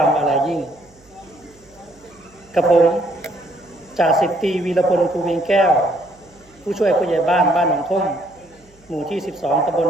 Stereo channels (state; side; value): noise; right; hum, 30 dB below the sound